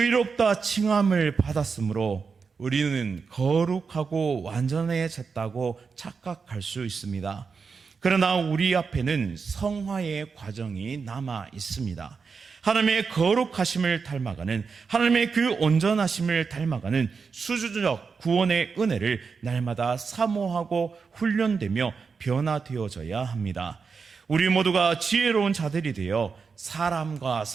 칭함을 받았으므로 우리는 거룩하고 완전해졌다고 착각할 수 있습니다. 그러나 우리 앞에는 성화의 과정이 남아 있습니다. 하나님의 거룩하심을 닮아가는, 하나님의 그 온전하심을 닮아가는 수주적 구원의 은혜를 날마다 사모하고 훈련되며 변화되어져야 합니다. 우리 모두가 지혜로운 자들이 되어 사람과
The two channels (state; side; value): quieter; left; 5.3 dB